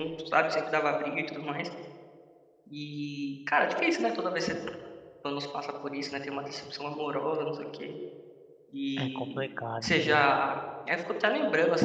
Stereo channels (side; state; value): both; identical; correlation 1.00